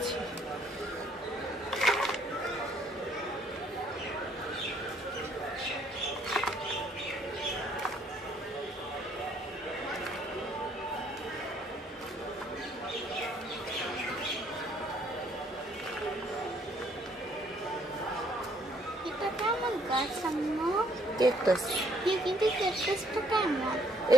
ক্যাকটাস। কিন্তু ক্যাকটাসটা কেমন?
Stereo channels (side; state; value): both; normal; correlation 0.65